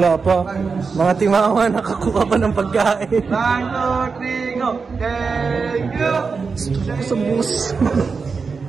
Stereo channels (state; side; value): quieter; left; 5.0 dB